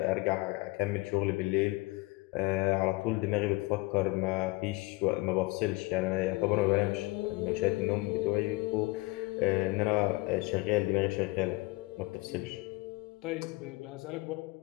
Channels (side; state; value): right; quieter; 23.3 dB